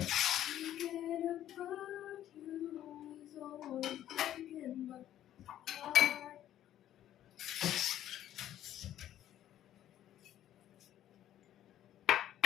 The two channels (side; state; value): right; quieter; 12.0 dB